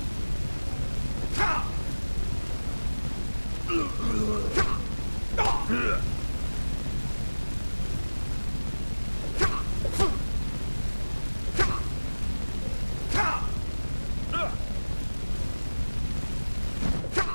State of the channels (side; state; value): both; inverted; correlation -1.00